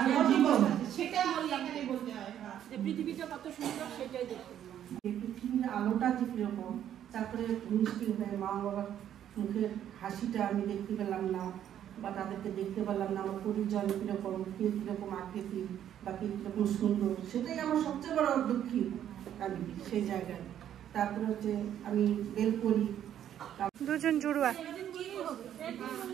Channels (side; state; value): left; quieter; 10.5 dB